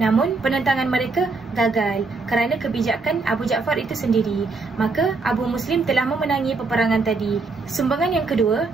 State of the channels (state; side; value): quieter; left; 4.0 dB